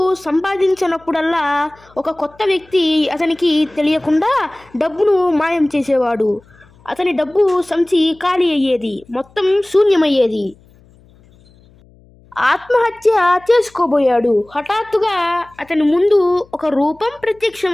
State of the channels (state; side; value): noise; left; hum, 29 dB below the sound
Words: సంపాదించినప్పుడల్లా ఒక కొత్త వ్యక్తి అతనికి తెలియకుండా డబ్బును మాయం చేసేవాడు. అతని డబ్బు సంచి ఖాళీ అయ్యేది, మొత్తం శూన్యమయ్యేది. ఆత్మహత్య చేసుకోబోయాడు. హఠాత్తుగా అతని ముందు ఒక రూపం